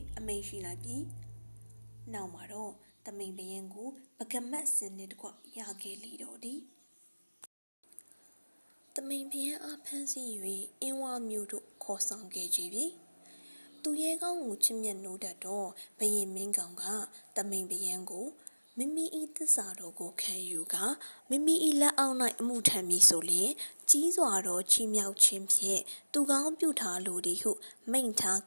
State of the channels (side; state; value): both; inverted; correlation -1.00